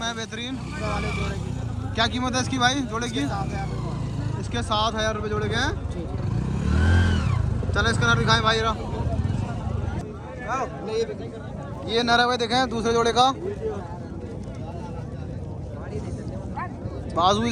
बेहतरीन। वाले जोड़े की क्या कीमत है इसकी भाई जोड़े की? 7,000 इसके 7,000 रुपये जोड़े के हैं। चले इसका नर दिखाएं भाई रा। ये नर है भाई, देखें दूसरे जोड़े का। बाजू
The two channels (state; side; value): identical; both; correlation 1.00